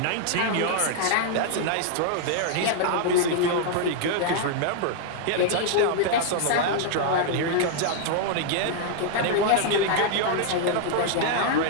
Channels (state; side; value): different; both; correlation -0.01